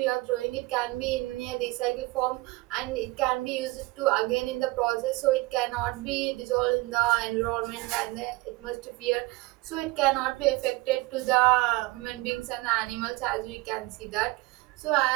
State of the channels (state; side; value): quieter; left; 22.1 dB